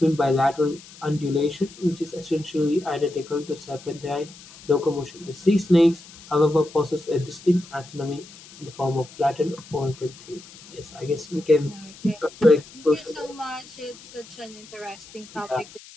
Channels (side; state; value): left; noise; hiss, 20 dB below the sound